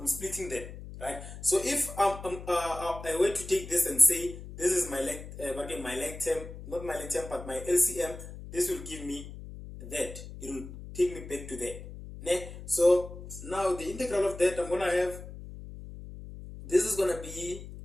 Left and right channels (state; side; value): noise; left; hum, 12 dB below the sound